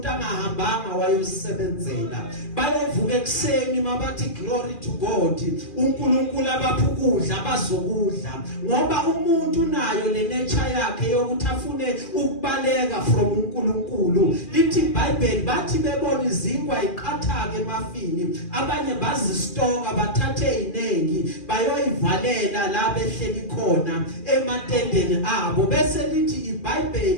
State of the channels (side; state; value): right; late; 2.4 ms